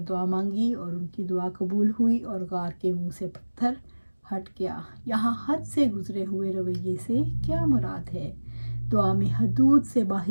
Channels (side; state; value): both; inverted; correlation -1.00